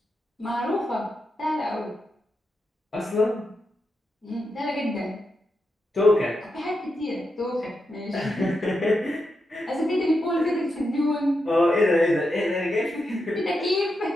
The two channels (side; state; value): both; normal; correlation 0.86